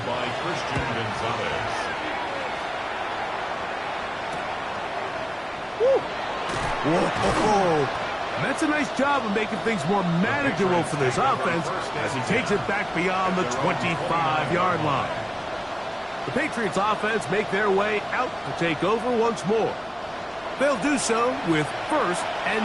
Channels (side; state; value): both; identical; correlation 1.00